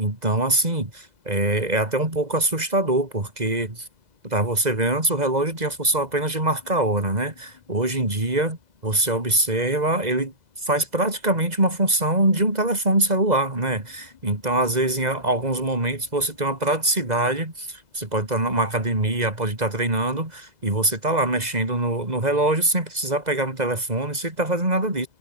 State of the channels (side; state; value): left; late; 2.0 ms